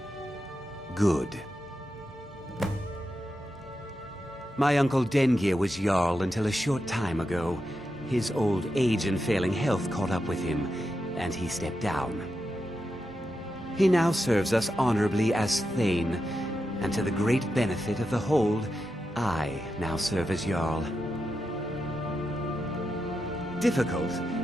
Good. My uncle Dengir was Jarl until a short time ago. His old age and failing health caught up with him, and he stepped down. He now serves us honorably as Thane, and to the great benefit of the Hold, I now serve as Jarl. Difficult?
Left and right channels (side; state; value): both; normal; correlation 0.87